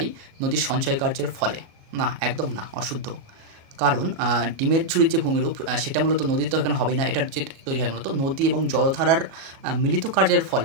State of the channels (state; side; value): late; left; 37 ms